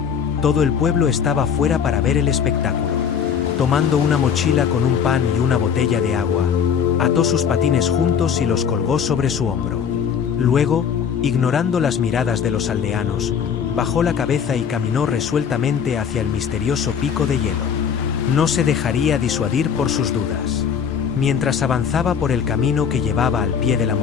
todo el pueblo estaba fuera para ver el espectáculo. Tomando una mochila con un pan y una botella de agua, ató sus patines juntos y los colgó sobre su hombro. Luego, ignorando las miradas de los aldeanos, bajó la cabeza y caminó resueltamente hacia el misterioso pico de hielo. No se dejaría disuadir por sus dudas. Mientras avanzaba por el camino que llevaba al pie de la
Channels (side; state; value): right; quieter; 7.4 dB